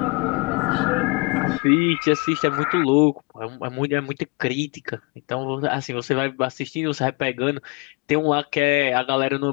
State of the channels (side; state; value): right; quieter; 27.2 dB